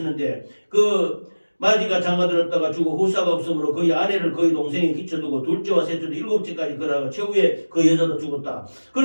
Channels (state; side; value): inverted; both; correlation -1.00